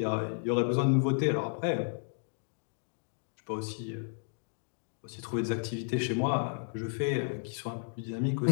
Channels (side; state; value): right; silent; digital silence